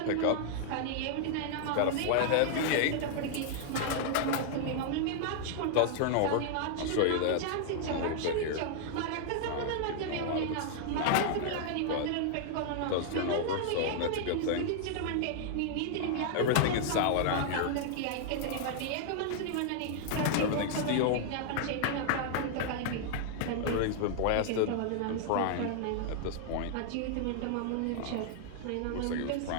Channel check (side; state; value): both; different; correlation 0.00